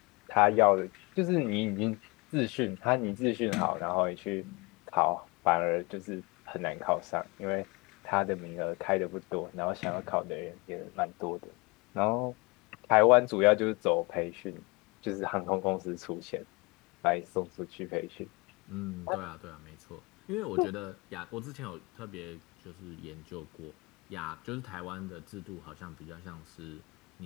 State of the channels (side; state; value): right; quieter; 27.1 dB